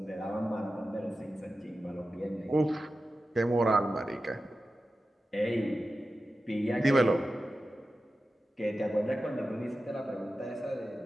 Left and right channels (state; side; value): normal; both; correlation 0.93